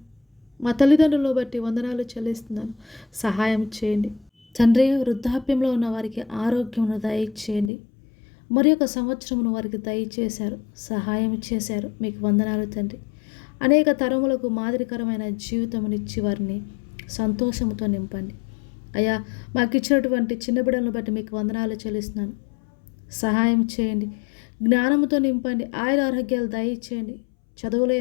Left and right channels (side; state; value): right; drops out; at 7.7 s